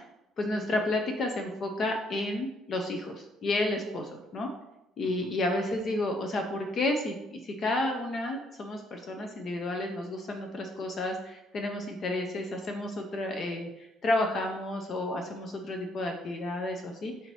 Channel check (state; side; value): normal; both; correlation 0.69